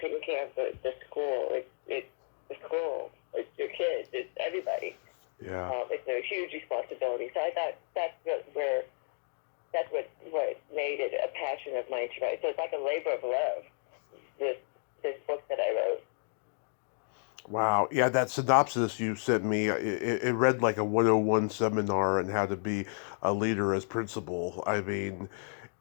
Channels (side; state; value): right; silent; digital silence